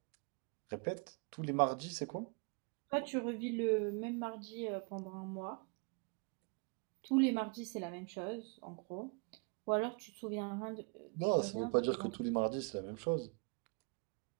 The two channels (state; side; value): quieter; left; 34.2 dB